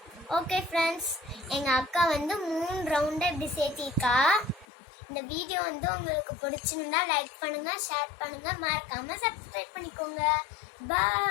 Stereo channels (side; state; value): right; drops out; at 4.7 s